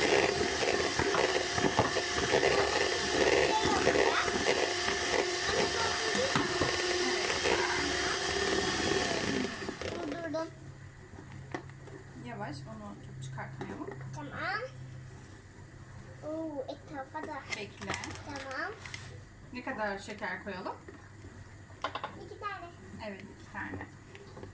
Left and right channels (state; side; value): identical; both; correlation 1.00